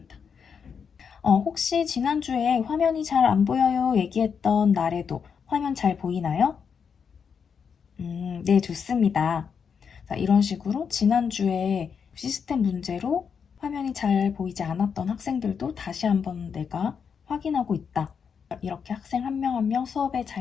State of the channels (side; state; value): right; quieter; 6.6 dB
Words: 혹시 지난주에 화면이 잘 안 보여요 얘기했던 날에도 화면 잘 보이나요? 네, 좋습니다. 자, 이런 식으로 지난주에 시스템 문제로 화면이 잘 보이지 않았던 학생들도 다시 한번 내가 확인하고 있다. 이렇게 학생 한 명 한 명 수업에